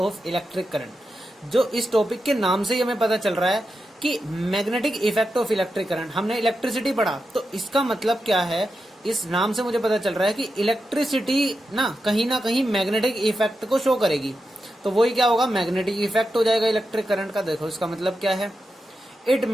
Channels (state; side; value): normal; both; correlation 0.89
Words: electric current. जो इस टॉपिक के नाम से ही हमें पता चल रहा है कि magnetic effect of electric current, हमने इलेक्ट्रिसिटी पढ़ा तो इसका मतलब क्या है। इस नाम से मुझे पता चल रहा है कि इलेक्ट्रिसिटी ना कहीं मैग्नेटिक इफेक्ट को शो करेगी, तो वही क्या होगा, मैग्नेटिक इफेक्ट हो जाएगा इलेक्ट्रिक करंट का। देखो इसका मतलब क्या है, it